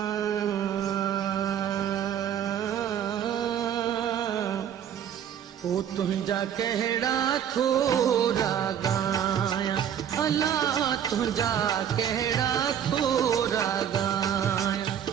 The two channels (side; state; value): left; quieter; 9.4 dB